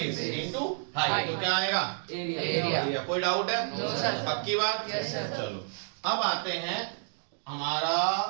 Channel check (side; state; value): left; silent; digital silence